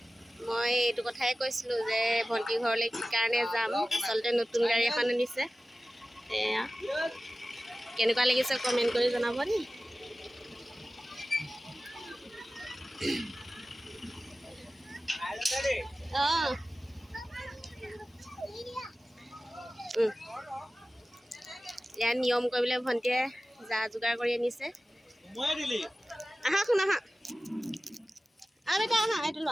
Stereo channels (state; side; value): normal; both; correlation 0.96